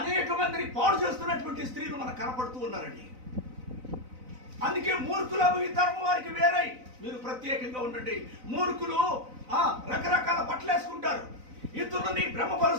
మందిని పాడు చేస్తున్నటువంటి స్త్రీలు మనకు కనపడుతూ ఉన్నారండి. అందుకే మూర్ఖులకు ఈ తరం వారికి వేరై మీరు ప్రత్యేకంగా ఉండండి. మూర్ఖులు రకరకాల బట్టలు వేసుకుంటారు, ఇతరులని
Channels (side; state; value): left; late; 4.0 ms